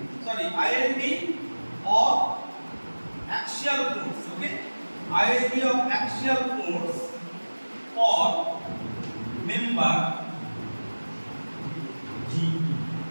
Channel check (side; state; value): both; inverted; correlation -1.00